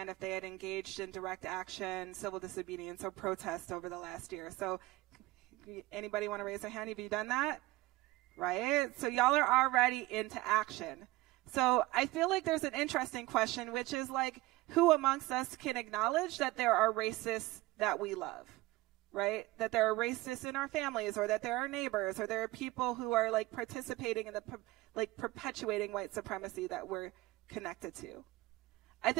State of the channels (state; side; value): quieter; left; 19.4 dB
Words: if they had engaged in direct action, civil disobedience, or protest over the last year. So anybody want to raise their hand? Have you done that? Right? So y'all are already into action. So I feel like there's an interesting question, which is who amongst us can acknowledge that there are racists that we love? Right? That there are racists in our families, or that there are neighbors, or there are people who are participating in the perpetuating white supremacy that we're connected to. I